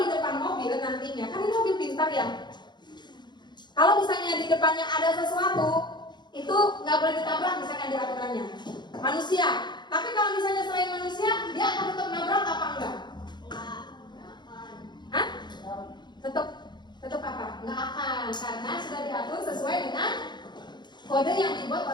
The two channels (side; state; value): right; late; 0.21 ms